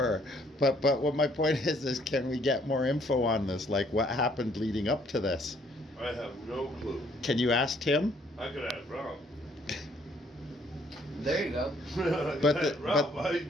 But what my point is can we get more info on this? Like what happened leading up to this? I have no clue. Can you ask Tim? I could ask Ralph. There you go. But Ralph, my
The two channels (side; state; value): both; normal; correlation 0.64